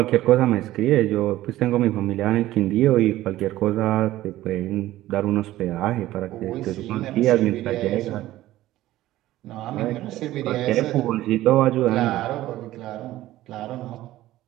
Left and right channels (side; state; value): left; quieter; 15.4 dB